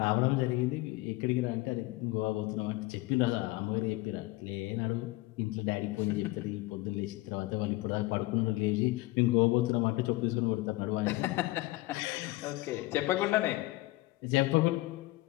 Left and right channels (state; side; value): quieter; right; 20.1 dB